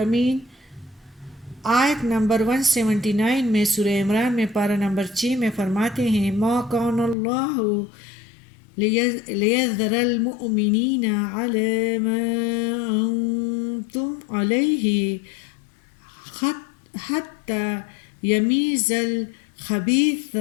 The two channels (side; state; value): right; drops out; at 7.2 s